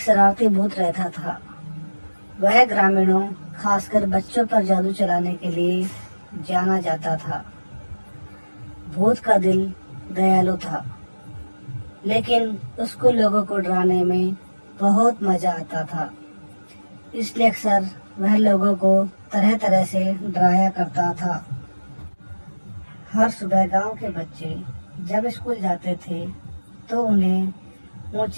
भूत रहता था। वह ग्रामीणों, खासकर बच्चों पर जादू चलाने के लिए जाना जाता था। भूत का दिल दयालु था, लेकिन उसको लोगों को डराने में बहुत मजा आता था। इसलिए अक्सर वह लोगों को तरह तरह से डराया करता था। हर सुबह गांव के बच्चे जब स्कूल जाते थे तो उन्हें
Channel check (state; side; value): inverted; both; correlation -1.00